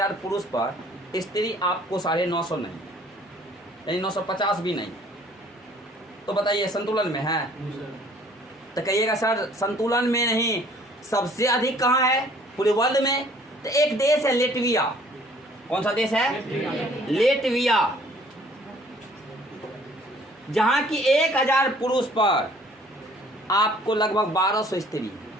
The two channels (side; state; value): both; normal; correlation 0.56